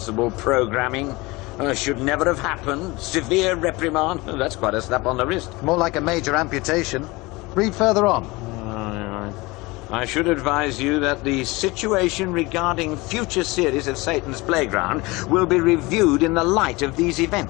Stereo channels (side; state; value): right; quieter; 23.0 dB